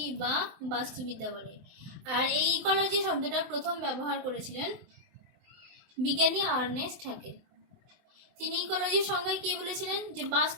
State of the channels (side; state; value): left; late; 24 ms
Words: বা বাস্তুবিদ্যা বলে। আর এই ইকোলজি শব্দটা প্রথম ব্যবহার করেছিলেন বিজ্ঞানী আর্নেস্ট হ্যাকেল। তিনি ইকোলজির সংজ্ঞায় কি বলেছিলেন? যে